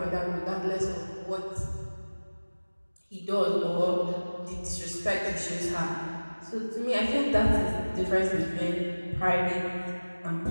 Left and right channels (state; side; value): inverted; both; correlation -1.00